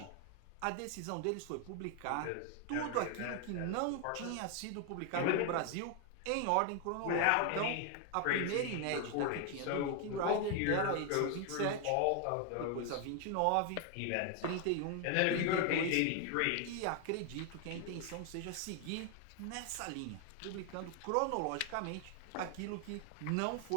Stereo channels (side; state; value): both; different; correlation 0.01